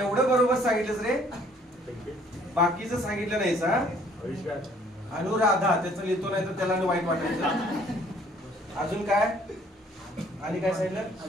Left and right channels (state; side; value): normal; both; correlation 0.60